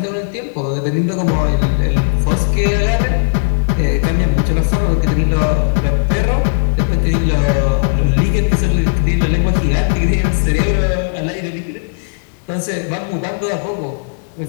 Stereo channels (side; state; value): right; silent; digital silence